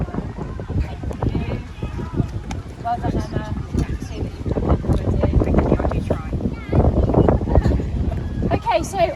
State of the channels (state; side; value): identical; both; correlation 1.00